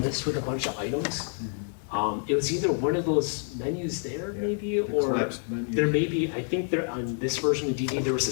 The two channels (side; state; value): right; silent; 59 dB below the other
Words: with a bunch of items. It was either one of those menus there maybe, or collapsed menu. there may be, I think there on this version of DD, there was a